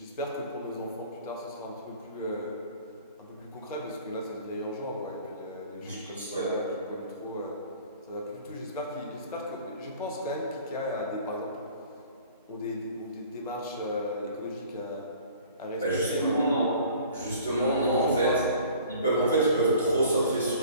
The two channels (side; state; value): both; inverted; correlation -0.49